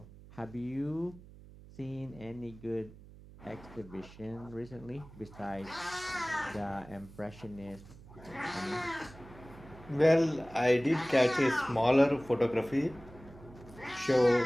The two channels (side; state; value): right; noise; hum, 19 dB below the sound